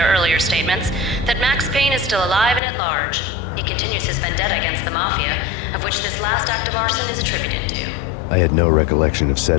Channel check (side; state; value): right; drops out; at 2.6 s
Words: earlier statements, that Max Payne is still alive and at large. He continues his vendetta against the Mafia, of which this last act of arson is attributed to. I had no recollection of